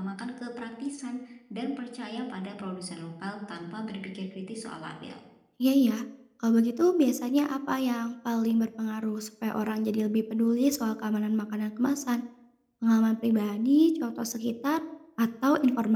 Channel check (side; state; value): both; identical; correlation 1.00